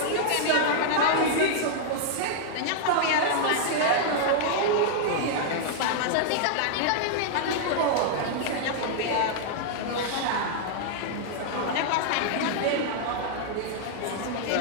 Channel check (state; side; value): different; both; correlation -0.01